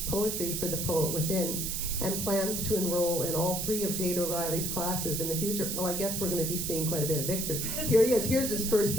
poetry for the poet within, and plans to enroll in all 3 of Jade O'Reilly's classes in the future. Well, I guess we're going to be seeing quite a bit of Victor. Here he is. Here's his first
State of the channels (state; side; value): noise; right; hiss, 2 dB below the sound